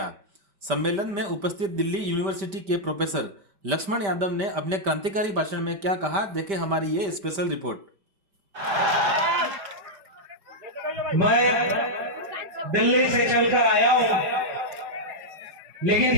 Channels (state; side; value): late; left; 5.1 ms